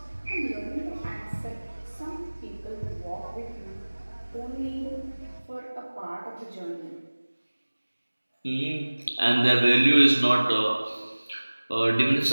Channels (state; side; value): inverted; both; correlation -1.00